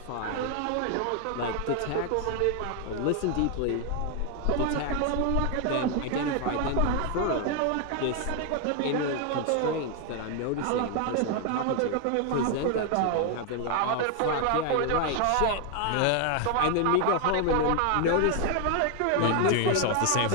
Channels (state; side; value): different; both; correlation 0.01